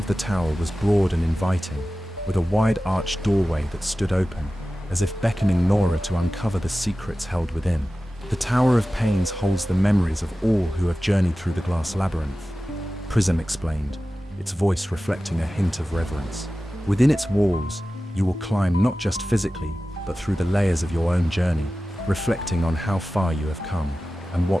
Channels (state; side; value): normal; both; correlation 0.95